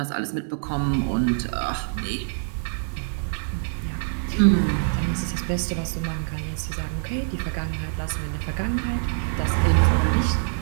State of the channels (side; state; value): left; silent; digital silence